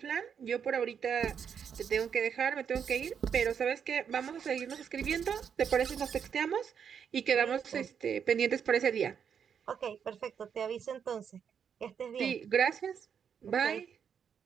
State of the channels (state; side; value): quieter; left; 7.5 dB